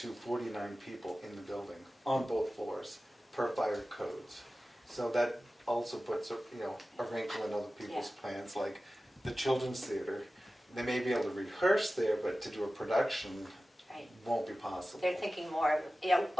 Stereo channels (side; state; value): both; normal; correlation 0.95